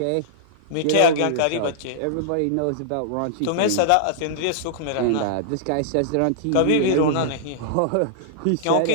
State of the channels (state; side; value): different; both; correlation -0.02